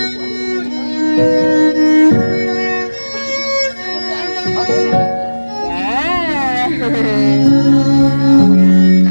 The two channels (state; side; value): inverted; both; correlation -1.00